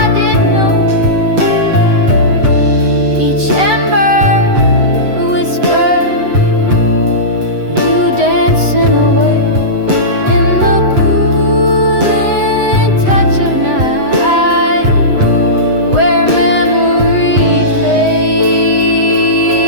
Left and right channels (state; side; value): late; left; 8.0 ms